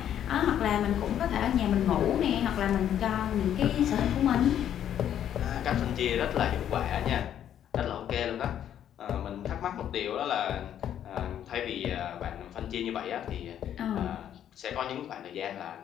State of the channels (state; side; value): quieter; right; 10.2 dB